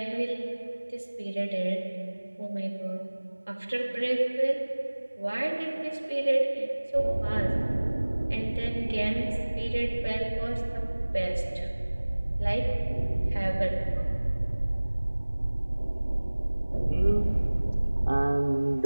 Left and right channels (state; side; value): inverted; both; correlation -1.00